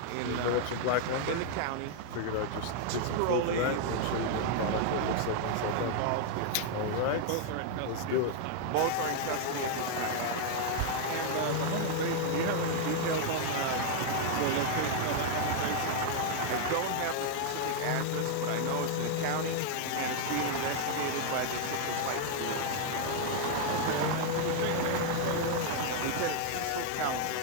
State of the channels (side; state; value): both; different; correlation 0.00